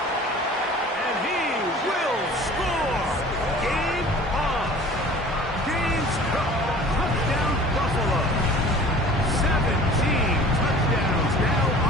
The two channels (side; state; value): both; normal; correlation 0.46